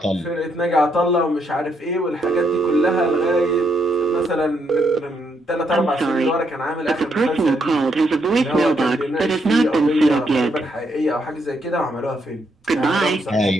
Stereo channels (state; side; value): normal; both; correlation 0.76